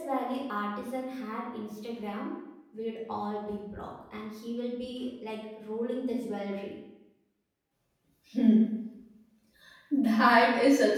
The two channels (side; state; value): both; identical; correlation 1.00